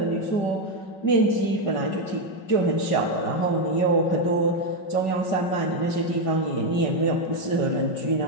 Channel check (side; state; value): right; late; 5.3 ms